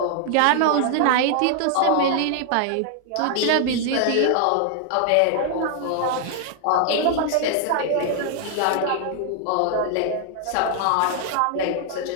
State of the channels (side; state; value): both; different; correlation 0.00